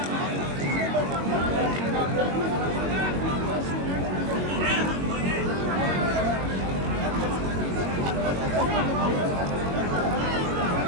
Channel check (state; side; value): late; left; 22 ms